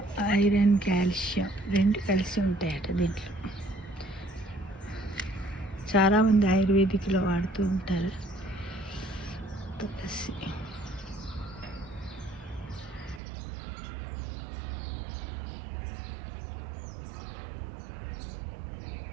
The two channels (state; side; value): drops out; left; at 13.2 s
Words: ఐరన్ కాల్షియం రెండు కలిసి ఉంటాయట దీంట్లో. చాలామంది ఆయుర్వేదిక్లో వాడుతూ ఉంటారు తులసి.